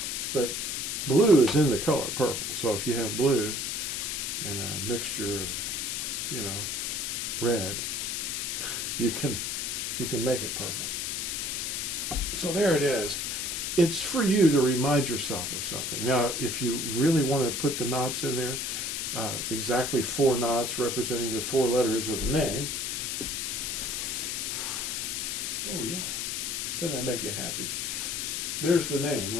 But blue is in the color purple. So if you have blue and a mixture of, red, you can make it purple. So there it is. It's for you to remind yourself of something. Now, if you really want to put the knots in there, exactly 4 knots representing the 4 letters of the name. Oh yeah, doesn't that make you happy? There's the name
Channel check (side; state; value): left; noise; hiss, 2 dB below the sound